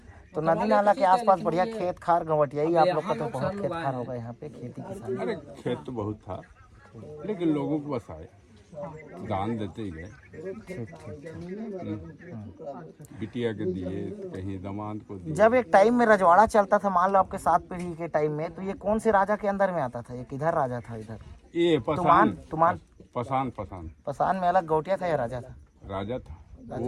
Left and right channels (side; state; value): both; identical; correlation 1.00